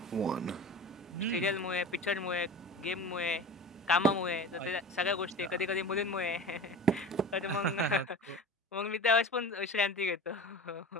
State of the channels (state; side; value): normal; both; correlation 0.34